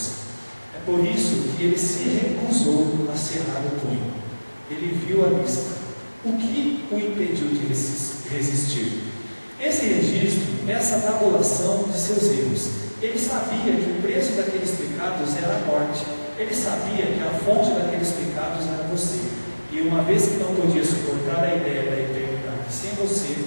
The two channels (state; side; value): inverted; both; correlation -1.00